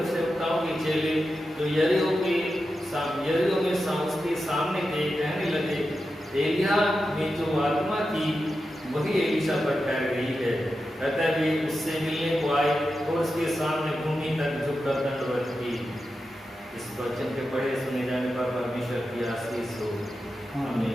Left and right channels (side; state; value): both; normal; correlation 0.90